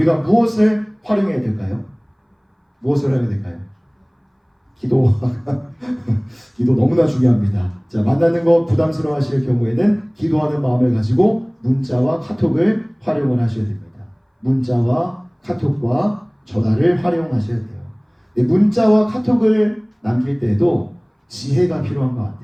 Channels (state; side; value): identical; both; correlation 1.00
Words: 무엇을 활용해야 될까요? 무엇을 해야 될까요? 기도. 기도 너무나 중요합니다. 자, 만나는 거 부담스러워 하실 경우에는 기도하는 마음을 가지고 문자와 카톡을 활용을 하셔야 됩니다. 문자와 카톡과 전화를 활용하셔야 돼요. 문자와 카톡을 남길 때에도 지혜가 필요한 것